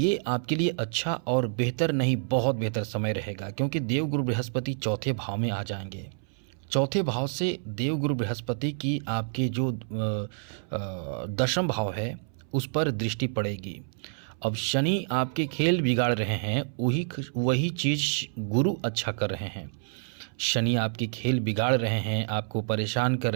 आपके लिए अच्छा और बेहतर नहीं, बहुत बेहतर समय रहेगा, क्योंकि देवगुरु बृहस्पति चौथे भाव में आ जाएंगे। चौथे भाव से देवगुरु बृहस्पति की आपके जो दशम भाव है उस पर दृष्टि पड़ेगी। अब शनि आपके खेल बिगाड़ रहे हैं, वही चीज़ गुरु अच्छा कर रहे हैं। शनि आपके खेल बिगाड़ रहे हैं, आपको परेशान कर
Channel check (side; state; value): left; silent; 59 dB below the other